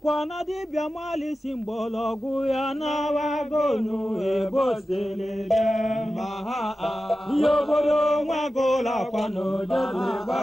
na dibia mali simbologu ya na wagonu ebosele maha Yobodo mwagola kwano jodle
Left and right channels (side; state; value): both; normal; correlation 0.93